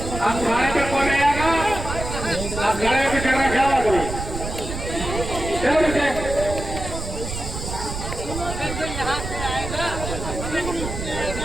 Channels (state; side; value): noise; right; rumble, 6 dB below the sound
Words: आप खाने पे कौन आएगा? आप खाने पे करना क्या बात हुई? चलो नीचे।